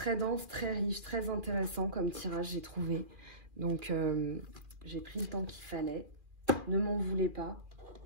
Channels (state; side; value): late; left; 2.4 ms